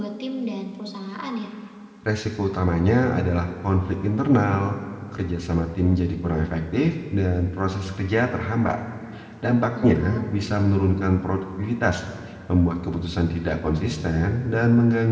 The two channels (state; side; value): identical; both; correlation 1.00